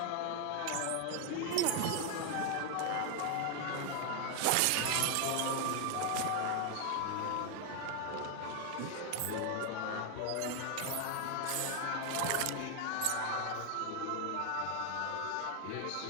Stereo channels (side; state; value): both; different; correlation 0.00